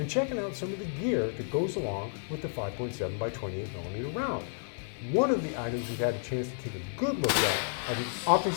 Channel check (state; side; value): silent; right; digital silence